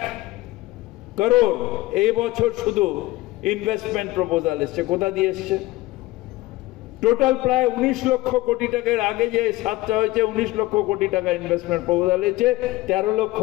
করোড় এই বছর শুধু ইনভেস্টমেন্ট প্রপোজাল এসছে। কোথা দিয়ে এসছে? টোটাল প্রায় 19 লক্ষ কোটি টাকার, আগে যে 7টা হয়েছে 19 লক্ষ কোটি টাকা ইনভেস্টমেন্ট প্রপোজাল এসেছে, 13 লক্ষ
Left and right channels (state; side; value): quieter; right; 18.7 dB